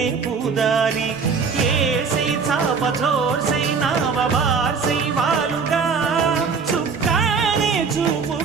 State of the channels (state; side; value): quieter; left; 5.4 dB